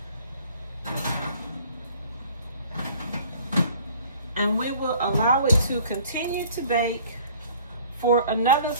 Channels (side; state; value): both; inverted; correlation -0.52